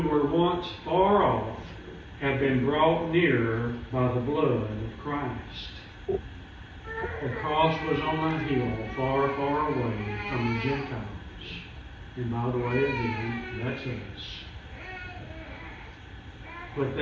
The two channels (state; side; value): identical; both; correlation 1.00